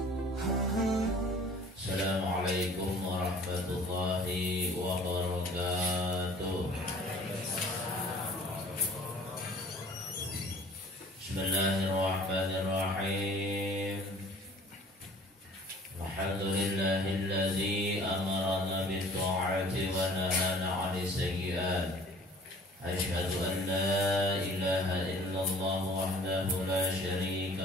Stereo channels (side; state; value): both; normal; correlation 0.50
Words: warahmatullahi wabarakatuh. Bismillahirrahmanirrahim. Alhamdulillahilladzi amarana bit-ta'ati wa nahana 'anil sayyi'at. Asyhadu an la ilaha illallah wahdahu la